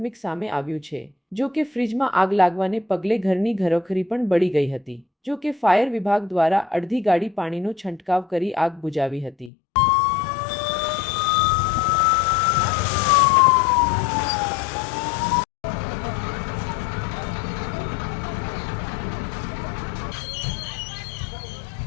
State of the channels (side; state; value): right; drops out; at 9.5 s